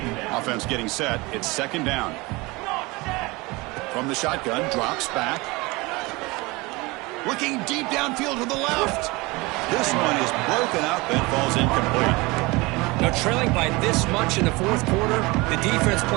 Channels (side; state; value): left; quieter; 23.7 dB